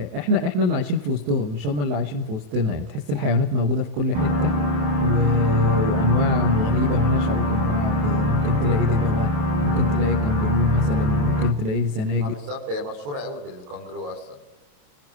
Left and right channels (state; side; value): late; left; 28 ms